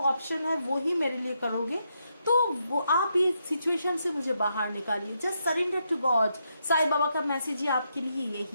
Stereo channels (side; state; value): both; inverted; correlation -0.81